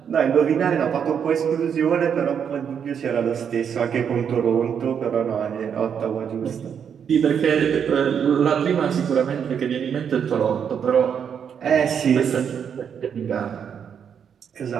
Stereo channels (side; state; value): left; quieter; 7.7 dB